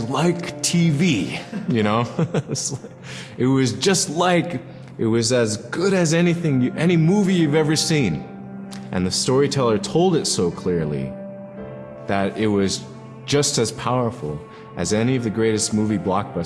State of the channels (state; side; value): identical; both; correlation 1.00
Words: like TV, It was just like, it was as good as any movie you've ever seen. And the storyteller told it so clearly that it was just as powerful as any of the greatest movie